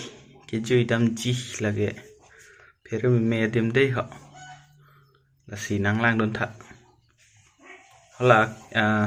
cái chui đâm chi là cái phía bên mẹ tìm đây họ là xì nắng lang đôn thật họ là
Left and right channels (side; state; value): both; identical; correlation 1.00